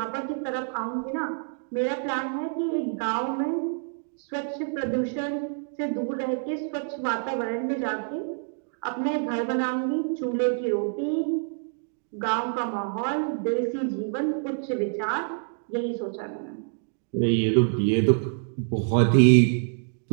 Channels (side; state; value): left; silent; 56 dB below the other